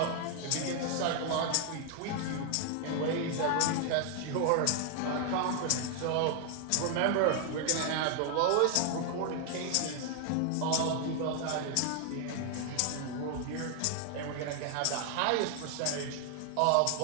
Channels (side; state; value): both; different; correlation 0.00